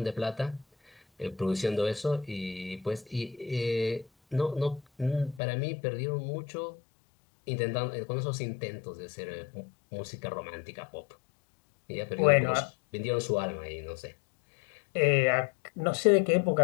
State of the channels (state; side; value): drops out; right; at 5.4 s